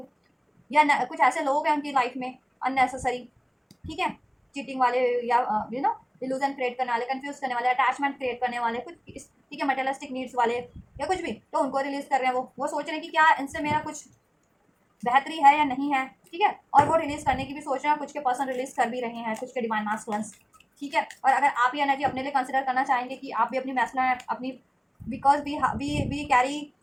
या कुछ ऐसे लोग हैं उनकी लाइफ में अननेसेसरी, ठीक है, चीटिंग वाले, या इल्यूजन क्रिएट करने वाले, कंफ्यूज करने वाले, अटैचमेंट क्रिएट करने वाले, कुछ ठीक है, मटेरियलिस्टिक नीड्स वाले, या कुछ भी, तो उनको रिलीज कर रहे हैं। वो सोच रहे हैं कि क्या इनसे मेरा कुछ बेहतरी है या नहीं है, ठीक है, और वो रिलीज करने की भी सोच रहे हैं, कुछ के पर्सन रिलीज कर भी रहे हैं, कुछ के डिवाइन मास्कुलेंस, ठीक है। और अगर आप ये एनर्जी अपने लिए कंसिडर करना चाहेंगे कि आप भी अपनी मैस्कुलिन अपनी, because we carry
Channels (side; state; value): both; identical; correlation 1.00